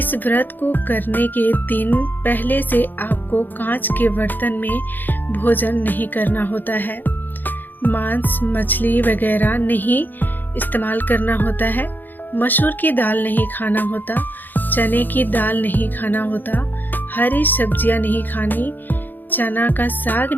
व्रत को करने के दिन पहले से आपको कांच के बर्तन में भोजन नहीं करना होता है। मांस, मछली वगैरह नहीं इस्तेमाल करना होता है। मसूर की दाल नहीं खाना होता, चने की दाल नहीं खाना होता, हरी सब्जियां नहीं खानी, चना का साग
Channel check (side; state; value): right; late; 0.089 ms